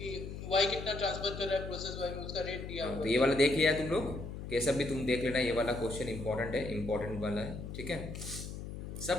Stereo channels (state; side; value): noise; left; hum, 8 dB below the sound